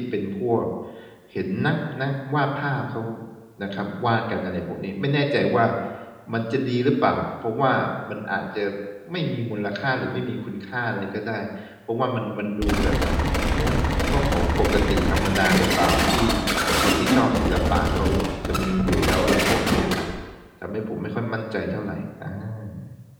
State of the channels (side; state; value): both; identical; correlation 1.00